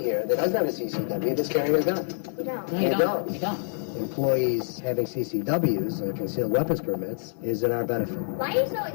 here that doesn't have a CCW that's carrying a gun? You don't. No, You don't. You don't. Employees having CCWs, or concealed weapons permits, is in our benefit. Why are you so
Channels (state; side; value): silent; right; 60 dB below the other